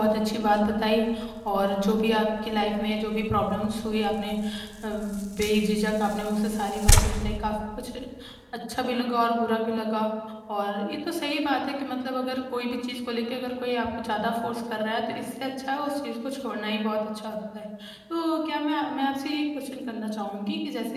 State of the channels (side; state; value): both; identical; correlation 1.00